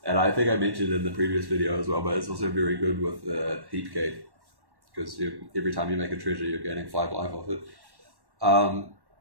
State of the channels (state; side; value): late; left; 1.1 ms